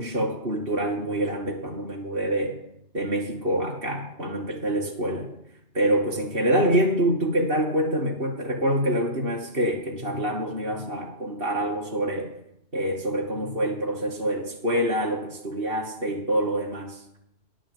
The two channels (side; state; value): left; late; 2.7 ms